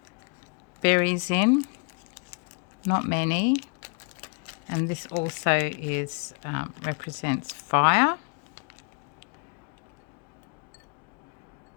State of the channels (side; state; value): right; quieter; 37.0 dB